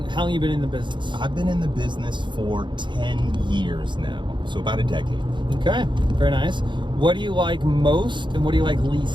you been in the business? I've been in the business for 10 years now, so about a decade. Okay, very nice. What do you like most and what do you like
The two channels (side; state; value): left; late; 0.23 ms